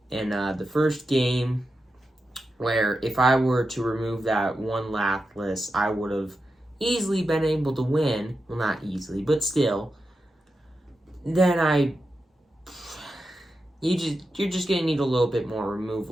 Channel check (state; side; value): normal; both; correlation 0.89